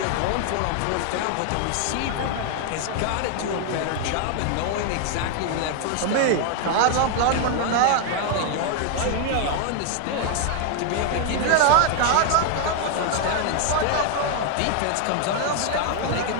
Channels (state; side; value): different; both; correlation 0.00